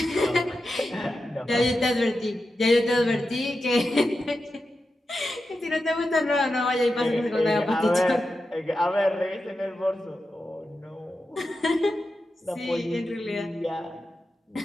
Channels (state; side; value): normal; both; correlation 0.90